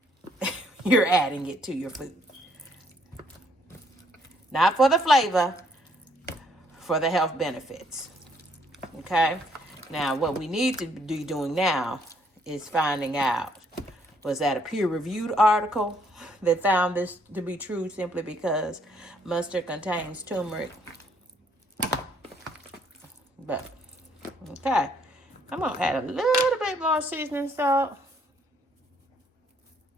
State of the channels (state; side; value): normal; both; correlation 0.67